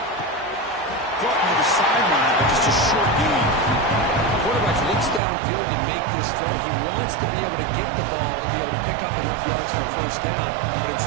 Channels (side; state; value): left; drops out; at 5.2 s